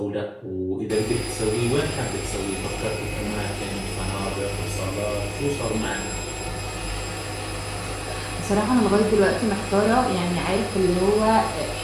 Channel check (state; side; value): identical; both; correlation 1.00